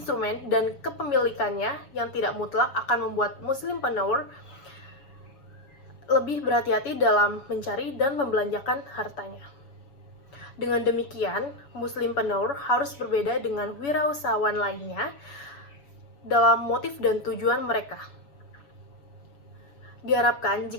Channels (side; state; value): right; late; 7.2 ms